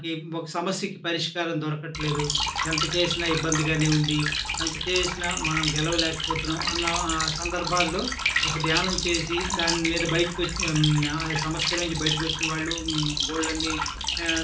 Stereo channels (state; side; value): identical; both; correlation 1.00